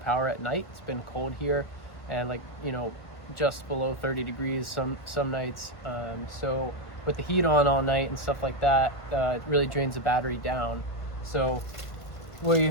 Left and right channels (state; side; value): late; right; 1.5 ms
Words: power at night. It's been cold here, and like, you know, just below 30 degrees some nights. So with the heat on all night and stuff like that, it really drains the battery down. So we